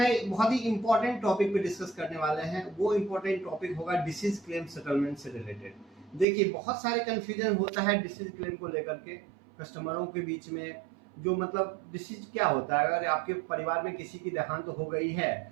बहुत ही इंपॉर्टेंट टॉपिक पे डिस्कस करने वाले हैं। वो इंपॉर्टेंट टॉपिक होगा डिसीज क्लेम सेटलमेंट से रिलेटेड। देखिए, बहुत सारे कंफ्यूजन होता है डिसीज क्लेम को लेकर के कस्टमरों के बीच में। जो मतलब डिसीज क्या होता है, अगर आपके परिवार में किसी की देहांत हो गई है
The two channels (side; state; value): left; drops out; at 6.2 s